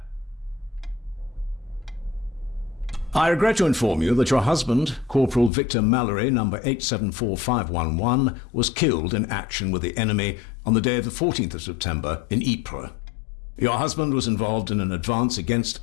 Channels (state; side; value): drops out; right; at 5.5 s